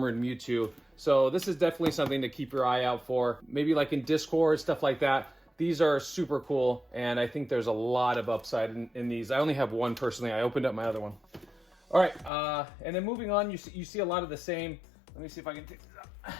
Mewtwo. So this is definitely something to keep your eye out for, maybe like in Discord, stuff like that. These are super cool, and I think there's a lot of upside in these. I only have one personally. I opened up my other one. All right, and then moving on, you see a lot of the same. Let me see if I can take this out.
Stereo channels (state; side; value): drops out; right; at 12.3 s